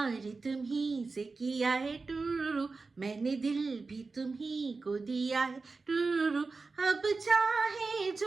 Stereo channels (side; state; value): left; quieter; 4.0 dB